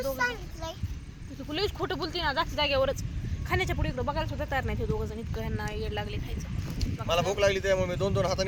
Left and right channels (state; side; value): identical; both; correlation 1.00